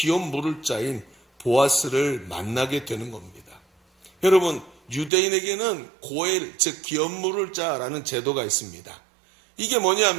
물을 자인 보아스를 만나게 되는 겁니다. 여러분 유대인에게는 고엘 즉 기업 물을 자라는 제도가 있습니다. 이게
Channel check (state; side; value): drops out; left; at 5.1 s